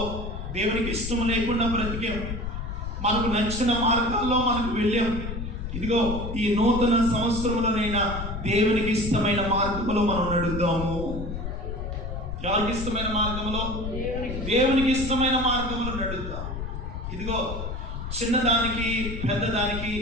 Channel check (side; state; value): left; noise; rumble, 6 dB below the sound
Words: దేవునికి ఇష్టం లేకుండా బ్రతికాం, మనకు నచ్చిన మార్గాల్లో మనకు వెళ్ళాం. ఇదిగో ఈ నూతన సంవత్సరంలోనైనా దేవునికి ఇష్టమైన మార్గంలో మనం నడుద్దాము. ఎవరికి ఇష్టమైన మార్గంలో? దేవునికి ఇష్టమైన మార్గంలో నడుద్దాం. ఇదిగో చిన్నదానికి పెద్దదానికి